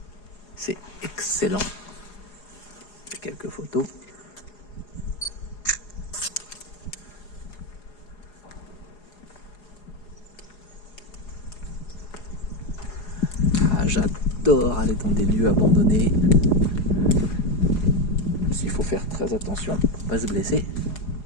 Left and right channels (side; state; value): right; late; 4.8 ms